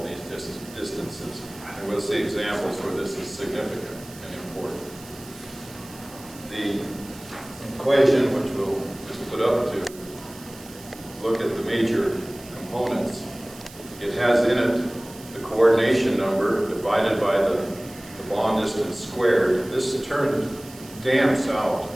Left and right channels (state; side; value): noise; right; hiss, 19 dB below the sound